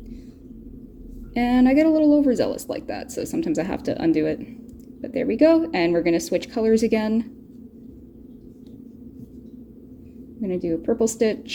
And I get a little overzealous like that, so sometimes I have to undo it. But there we go, and we're gonna switch colors again. I'm gonna do a purple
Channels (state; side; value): identical; both; correlation 1.00